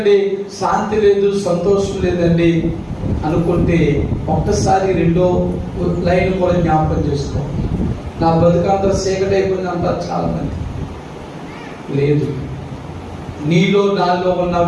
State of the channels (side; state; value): both; identical; correlation 1.00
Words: శాంతి లేదు, సంతోషం లేదండి అనుకుంటే ఒక్కసారి రెండో లైన్ కూడా జ్ఞాపకం చేసుకో. నా బ్రతికంతా చీకటి అయిపోయింది అంటారు చాలా మంది. లేదు, నీలో నాలో ఉన్న